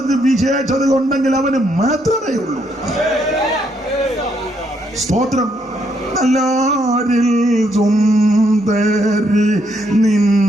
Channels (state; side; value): normal; both; correlation 0.74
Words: വിശേഷത ഉണ്ടെങ്കിൽ അവന് മാത്രമേ ഉള്ളൂ. സ്തോത്രം. നല്ലാരിൽ സുന്ദരി